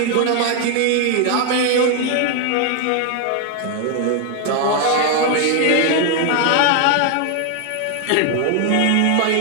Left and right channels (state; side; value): different; both; correlation 0.01